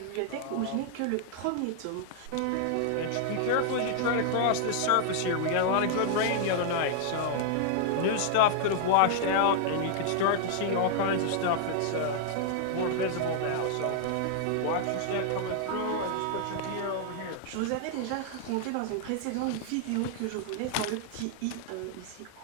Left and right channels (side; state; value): both; different; correlation -0.01